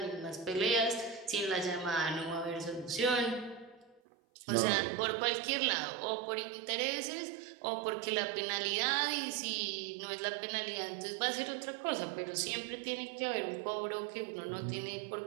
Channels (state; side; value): drops out; left; at 4.0 s